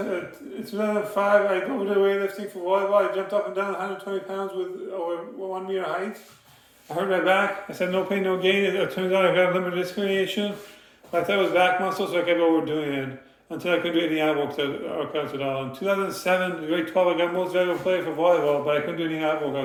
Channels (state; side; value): identical; both; correlation 1.00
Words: I did weightlifting for volleyball. I jumped up and down 120 pounds with over 1 meter height. I hurt my back. I said no pain, no gain. It turns out I got limited disc herniation. I thought it was back muscle, so I kept overdoing it until I couldn't do any ab workouts at all. In 2007, grade 12, I got most valuable player for volleyball, but I couldn't do any ab